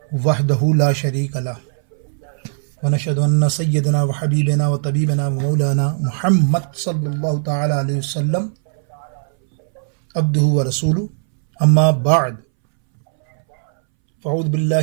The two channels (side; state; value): left; silent; 64 dB below the other